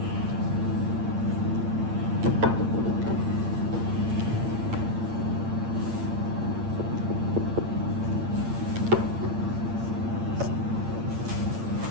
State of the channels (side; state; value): left; late; 8.8 ms